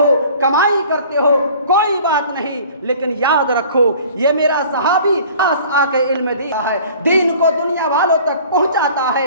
کمائی کرتے ہو، کوئی بات نہیں، لیکن یاد رکھو یہ میرا صحابی پاس آ کے علم دیا ہے، دین کو دنیا والوں تک پہنچاتا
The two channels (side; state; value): both; inverted; correlation -0.48